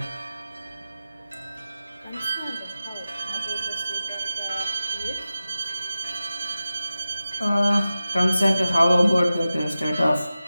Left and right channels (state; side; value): inverted; both; correlation -0.94